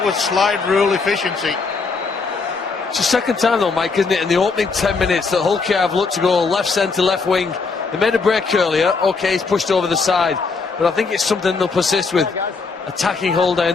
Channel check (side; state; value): right; quieter; 4.5 dB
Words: was slide rule efficiency. It's the second time though, Mike, isn't it, in the opening 10 minutes that Hull have looked to go left centre, left wing. They made a break earlier. OK, he's pushed over the side, but I think it's something they'll persist with, attacking Hull